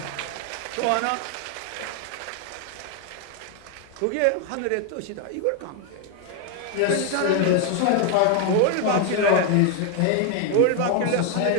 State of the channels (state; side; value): different; both; correlation 0.01